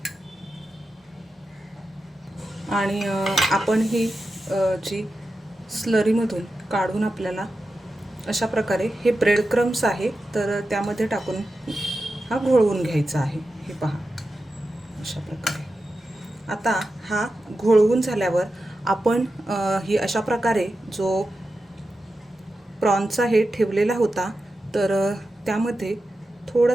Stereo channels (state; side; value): normal; both; correlation 0.91